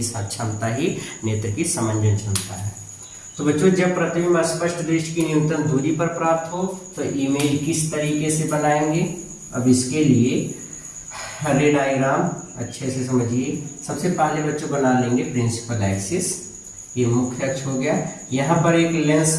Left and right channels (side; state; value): both; identical; correlation 1.00